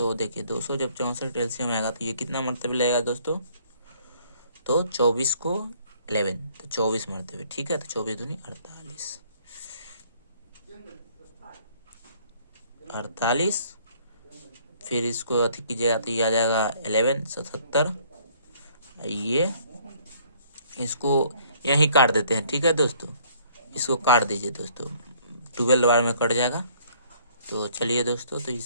देखिए 200 जब 64 LCM आएगा तो ये कितना मरतबे लगेगा दोस्तों। तो 24 को 11 तो 24 मरतबे। ठीक है, तो 24 दूनी 48। फिर इसको अति कीजिएगा तो ये आ जाएगा 11 77। ये इसको यहीं काट देते हैं। ठीक है दोस्तों, इसको काट दीजिए दोस्तों, 12 बार में कट जाएगा। तो चलिए दोस्तों, तो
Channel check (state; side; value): inverted; both; correlation -0.60